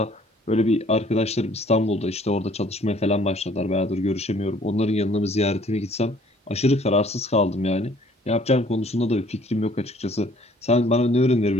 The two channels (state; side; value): normal; both; correlation 0.58